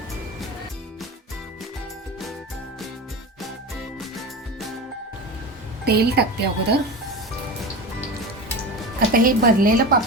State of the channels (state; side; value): normal; both; correlation 0.27